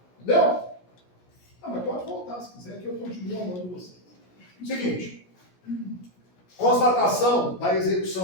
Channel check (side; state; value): right; late; 17 ms